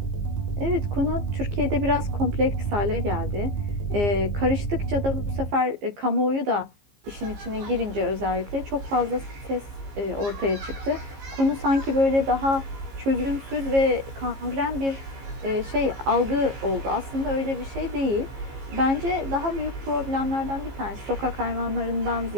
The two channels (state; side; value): late; left; 15 ms